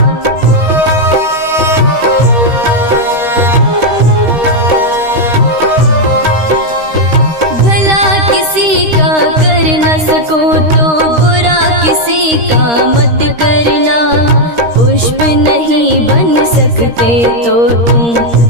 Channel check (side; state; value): left; late; 13 ms